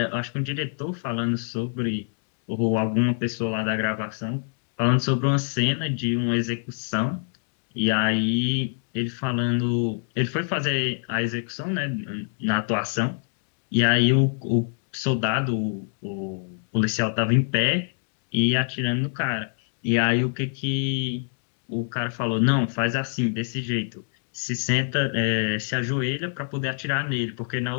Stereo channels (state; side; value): silent; right; digital silence